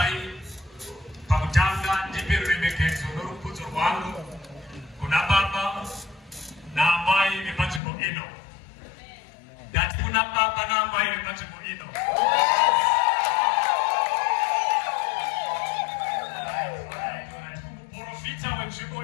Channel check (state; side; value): drops out; right; at 7.8 s